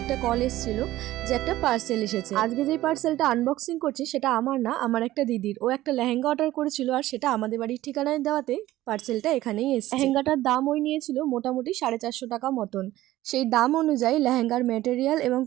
একটা কল এসেছিল যে একটা পার্সেল এসেছে। আজকে যে পার্সেলটা আনবক্সিং করছি সেটা আমার না, আমার একটা দিদির। ও একটা লেহেঙ্গা অর্ডার করেছিল, আর সেটা আমাদের বাড়ির ঠিকানায় দেওয়াতে পার্সেলটা এখানেই এসেছে। লেহেঙ্গাটার দাম ওই নিয়েছিল মোটামুটি 450 টাকা মতন। সেই দাম অনুযায়ী লেহেঙ্গার ম্যাটেরিয়াল এবং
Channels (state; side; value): quieter; left; 15.6 dB